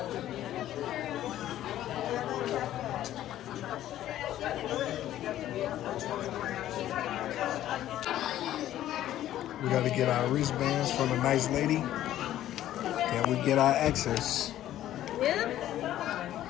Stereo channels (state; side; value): quieter; right; 12.8 dB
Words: We gotta get our wristbands from a nice lady. Then we get our access.